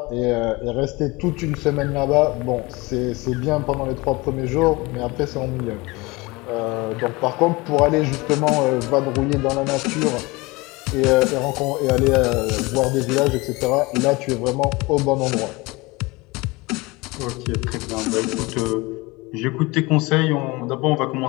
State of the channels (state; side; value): quieter; right; 23.6 dB